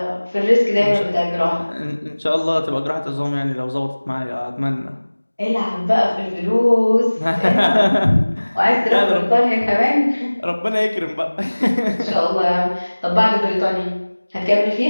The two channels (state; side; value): inverted; both; correlation -1.00